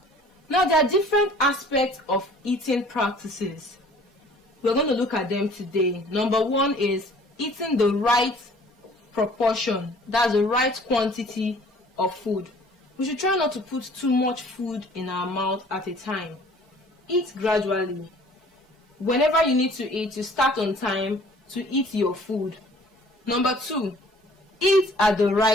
Now there are different aspects of eating practices. We're going to look at them today. Number 1 is eating the right proportion. That's the right quantity of food. We should try not to put too much food in our mouth at a time. Eat gradually. Whenever you need to eat, you start on time to eat your food. Number 2, eat at the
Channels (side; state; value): both; normal; correlation 0.52